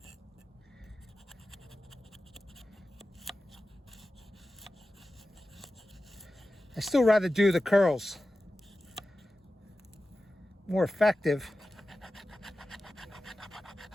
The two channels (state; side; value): normal; both; correlation 0.94